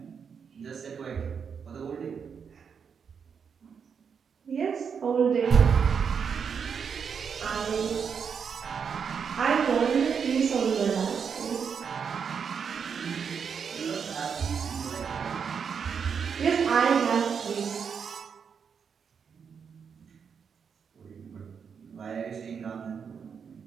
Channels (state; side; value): quieter; left; 6.6 dB